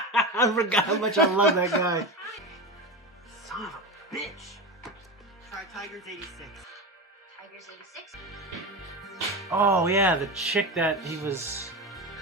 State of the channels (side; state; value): both; normal; correlation 0.23